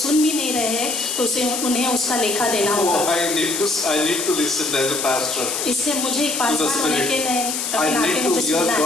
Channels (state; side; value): noise; left; hiss, 2 dB below the sound